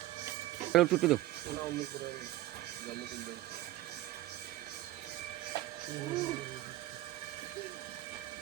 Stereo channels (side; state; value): left; quieter; 16.1 dB